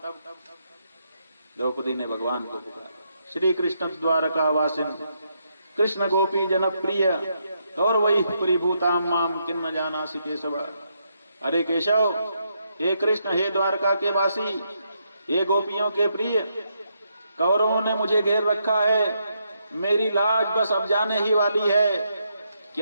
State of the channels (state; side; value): inverted; both; correlation -0.78